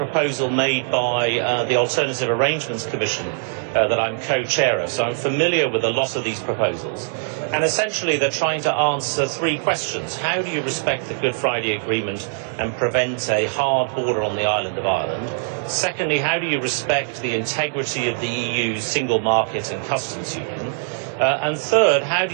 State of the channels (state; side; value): silent; left; 64 dB below the other